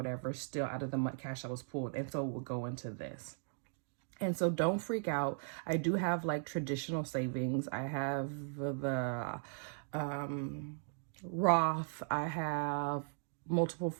still out of the month cash that was pulled. And so it would go into this. And so don't freak out. I do have like traditional savings. I have the Roth. I have multiple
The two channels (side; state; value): left; silent; digital silence